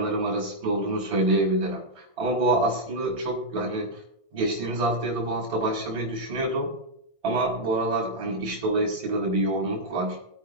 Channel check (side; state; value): left; late; 1.6 ms